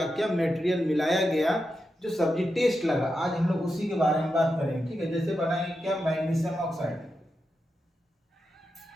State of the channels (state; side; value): normal; both; correlation 0.88